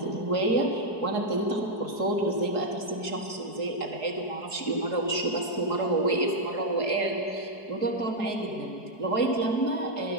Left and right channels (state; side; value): late; right; 4.7 ms